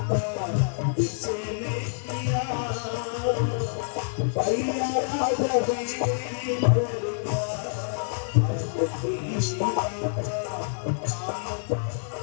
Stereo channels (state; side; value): silent; right; digital silence